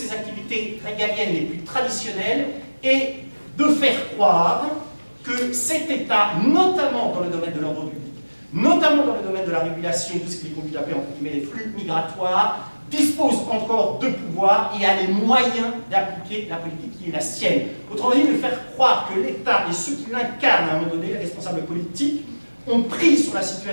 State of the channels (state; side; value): inverted; both; correlation -1.00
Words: activités régaliennes les plus traditionnelles et de faire croire que cet État, notamment dans le domaine de l'ordre public, notamment dans le domaine de la régulation de ce qu'il est conduit à appeler entre guillemets les flux migratoires, dispose encore de pouvoir et a les moyens d'appliquer la politique qui est la sienne. Autrement dit, de faire croire que l'État et ceux qui l'incarnent à un moment donné, les responsables politiques, ont pris sur la